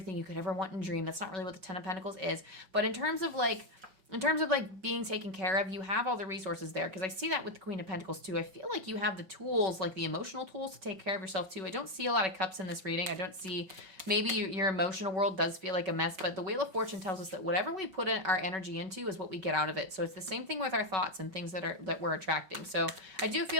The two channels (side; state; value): left; late; 5.3 ms